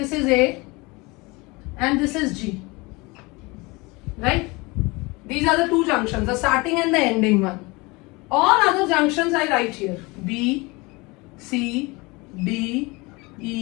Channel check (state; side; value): quieter; right; 25.0 dB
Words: is A and this is G. Right? These are the two junctions, the starting and the ending one. All other junctions I write here. B, C, D,